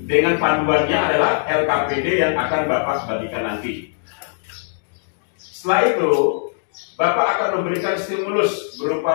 dengan panduannya adalah LKPD yang akan Bapak bagikan nanti. Setelah itu, Bapak akan memberikan stimulus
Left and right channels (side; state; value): right; silent; digital silence